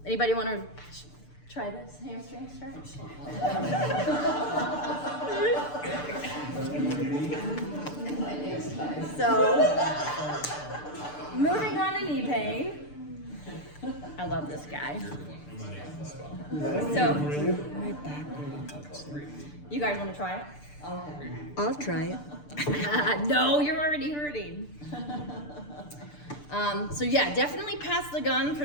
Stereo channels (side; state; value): right; late; 6.8 ms